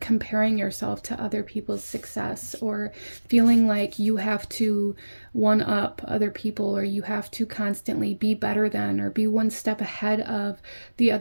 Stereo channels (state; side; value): inverted; both; correlation -1.00